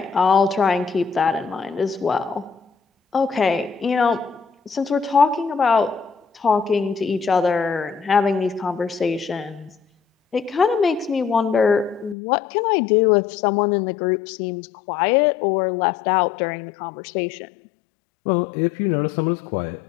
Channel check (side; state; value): right; drops out; at 12.2 s